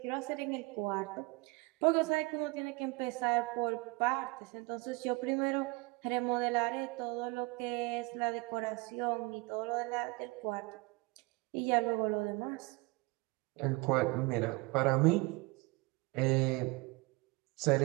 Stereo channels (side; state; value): left; quieter; 25.8 dB